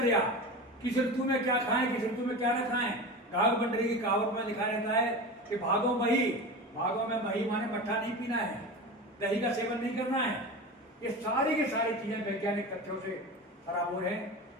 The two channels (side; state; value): both; normal; correlation 0.28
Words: किस ऋतु में क्या खाएं, किस ऋतु में क्या न खाएं। घाघ बंडरी की कहावत में लिखा रहता है कि भागो मही, भागो में मही माने मट्ठा नहीं पीना है, दही का सेवन नहीं करना है। ये सारी की सारी चीजें वैज्ञानिक तथ्यों से बराबर है।